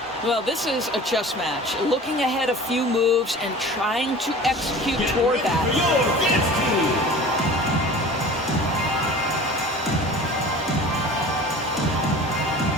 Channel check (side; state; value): both; normal; correlation 0.41